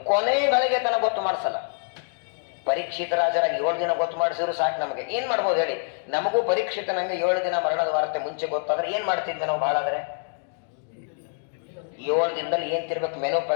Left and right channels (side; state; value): right; silent; digital silence